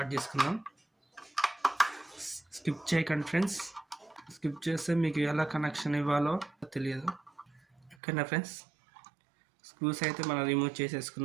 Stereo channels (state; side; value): drops out; left; at 8.0 s